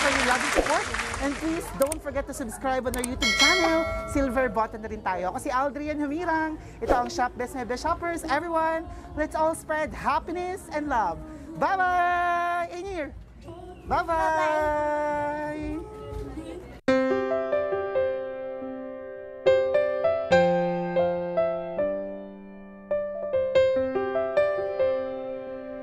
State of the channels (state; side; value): identical; both; correlation 1.00